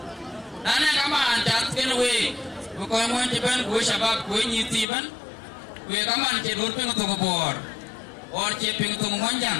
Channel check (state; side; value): drops out; right; at 4.9 s